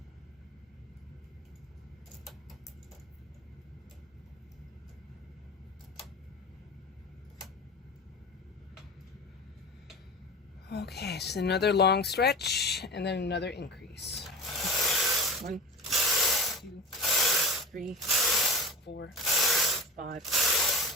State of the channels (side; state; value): both; normal; correlation 0.31